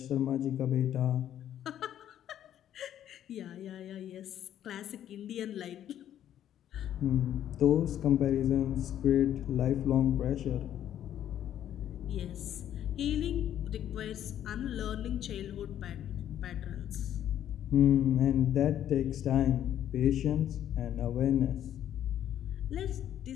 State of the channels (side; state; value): right; quieter; 10.9 dB